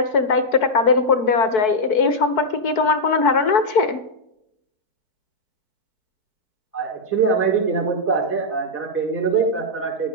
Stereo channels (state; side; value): late; right; 4.6 ms